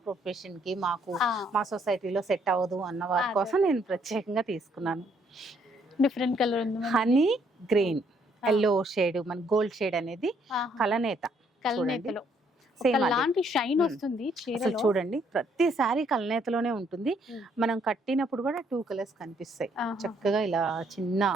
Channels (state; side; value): normal; both; correlation 0.68